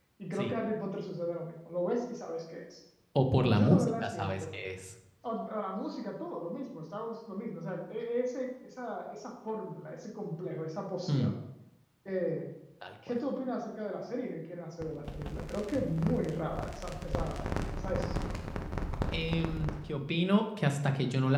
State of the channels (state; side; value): identical; both; correlation 1.00